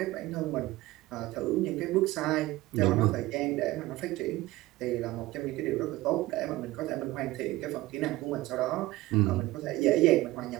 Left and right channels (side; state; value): left; quieter; 18.2 dB